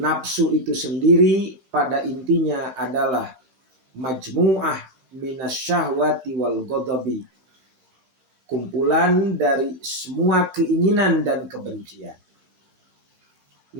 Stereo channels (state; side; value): late; left; 16 ms